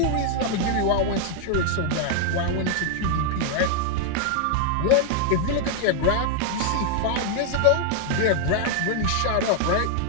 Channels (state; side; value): different; both; correlation 0.00